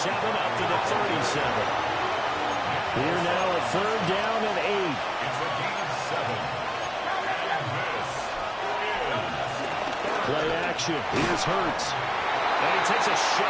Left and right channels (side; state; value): both; identical; correlation 1.00